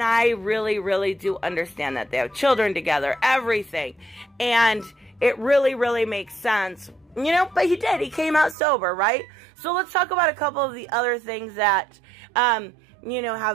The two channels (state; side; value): drops out; left; at 8.6 s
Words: I really, really do understand that. They have children together, everything, and it really, really makes sense, but he did. He came out sober, right? So let's talk about a couple of the other things that,